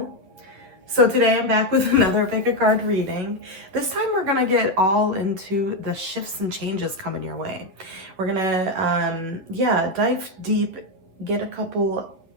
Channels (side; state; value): left; late; 10 ms